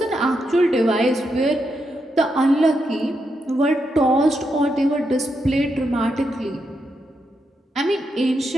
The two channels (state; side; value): normal; both; correlation 0.83